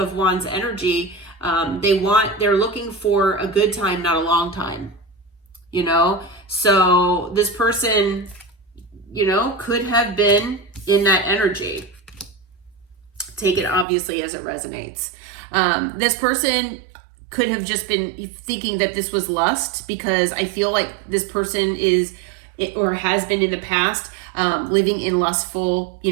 Wands energy, they're looking for a good time, not a long time, you know? So this person, you know, could have been in that energy. Take it obviously as it resonates. This person could have just been thinking that this was lust, because I feel like this person is, or has been in the past, living in lustful, you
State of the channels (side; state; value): left; drops out; at 13.9 s